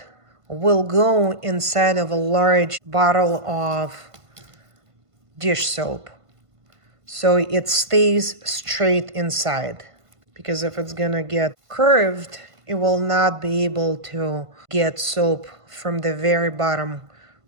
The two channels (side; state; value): left; late; 1.5 ms